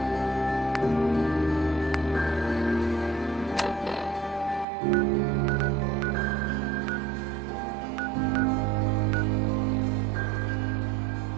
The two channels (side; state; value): left; drops out; at 4.7 s